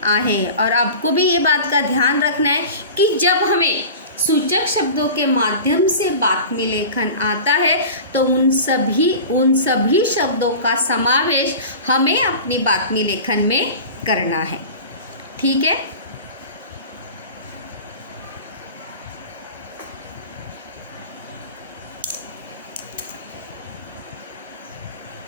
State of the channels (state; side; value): inverted; both; correlation -0.35